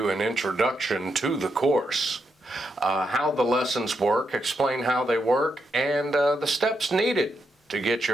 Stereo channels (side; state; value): both; normal; correlation 0.82